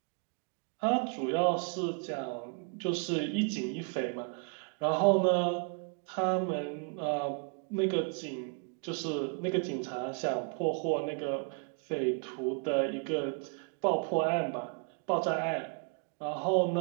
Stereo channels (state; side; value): quieter; left; 38.3 dB